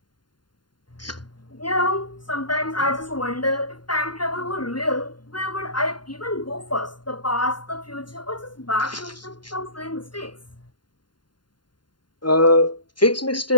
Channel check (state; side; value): late; right; 0.71 ms